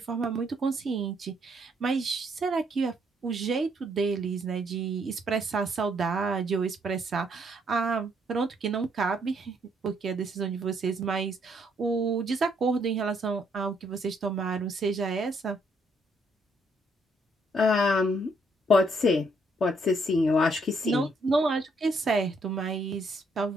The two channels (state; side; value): normal; both; correlation 0.70